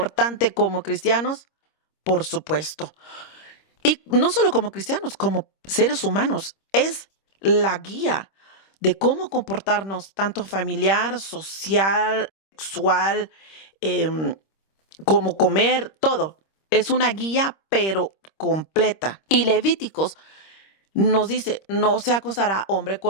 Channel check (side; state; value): right; late; 26 ms